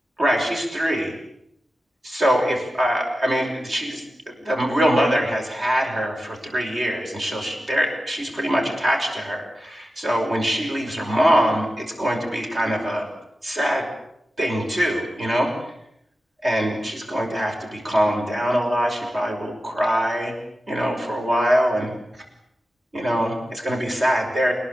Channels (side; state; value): both; normal; correlation 0.93